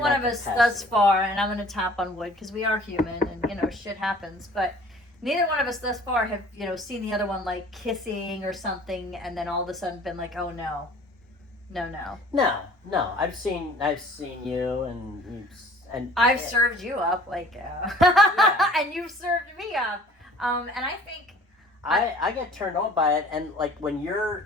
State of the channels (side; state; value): both; normal; correlation 0.50